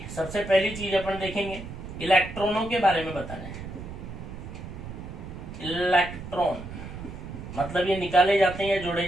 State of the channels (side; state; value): right; noise; rumble, 10 dB below the sound